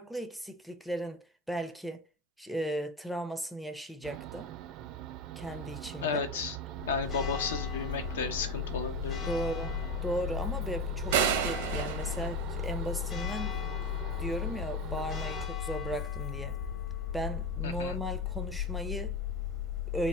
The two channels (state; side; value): normal; both; correlation 0.20